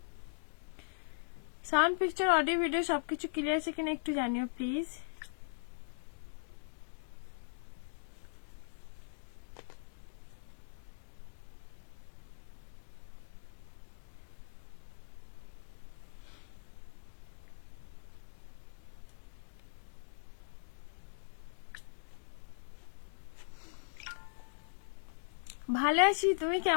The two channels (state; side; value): silent; right; digital silence